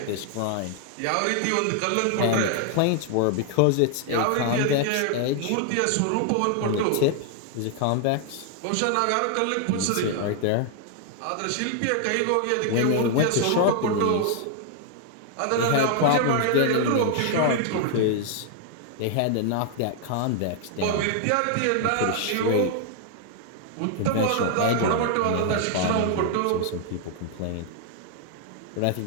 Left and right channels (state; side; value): different; both; correlation 0.00